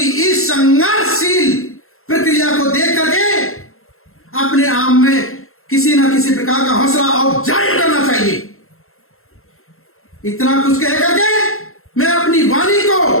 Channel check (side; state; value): right; late; 0.62 ms